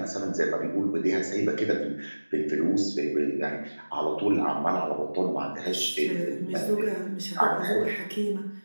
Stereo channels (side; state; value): both; inverted; correlation -1.00